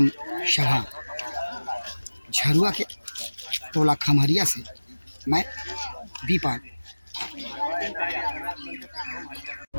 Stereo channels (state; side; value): inverted; both; correlation -1.00